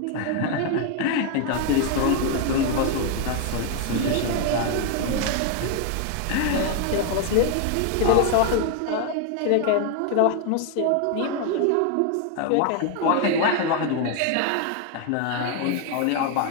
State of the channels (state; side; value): different; both; correlation 0.01